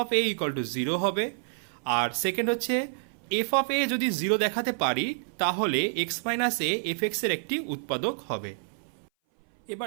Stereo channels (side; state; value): left; silent; 57 dB below the other